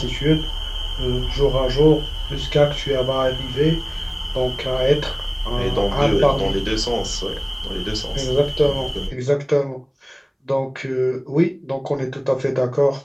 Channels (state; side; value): identical; both; correlation 1.00